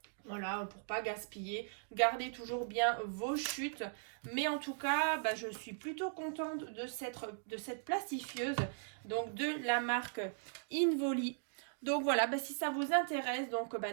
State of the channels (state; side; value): silent; left; digital silence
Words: voilà, pour pas gaspiller, gardez toujours bien vos chutes. Mais en tout cas, bah, je suis plutôt contente de cette plastifieuse, donc de la marque Involi. Donc voilà, bah, si ça vous intéresse, donc bah,